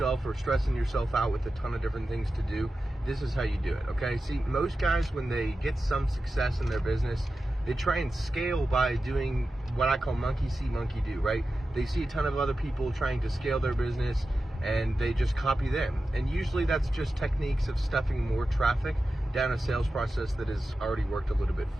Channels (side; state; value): both; normal; correlation 0.92